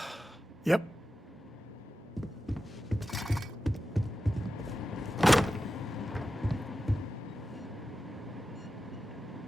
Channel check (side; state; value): both; normal; correlation 0.92